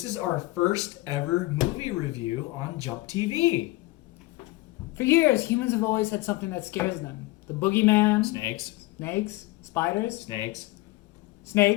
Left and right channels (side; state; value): right; quieter; 20.0 dB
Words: is our first ever movie review on JumpTV. For years, humans have always had something that scares them. The boogeyman. Snakes. Spiders.